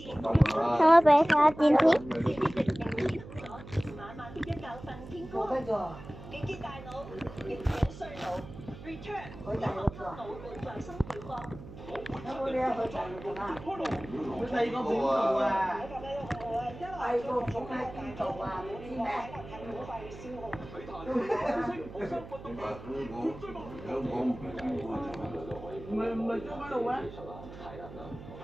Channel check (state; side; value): noise; right; hum, 15 dB below the sound